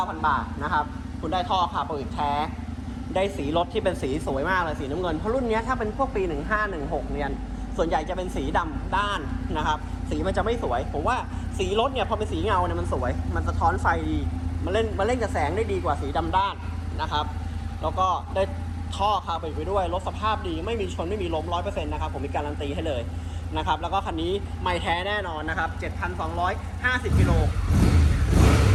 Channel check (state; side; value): identical; both; correlation 1.00